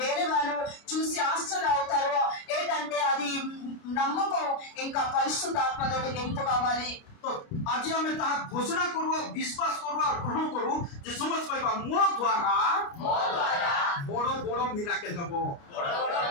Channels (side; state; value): right; late; 29 ms